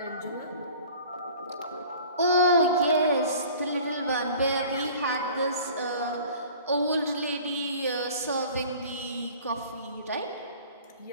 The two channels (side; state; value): both; inverted; correlation -0.46